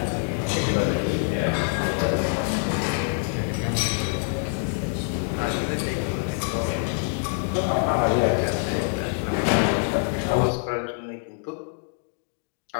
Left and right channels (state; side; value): silent; right; 58 dB below the other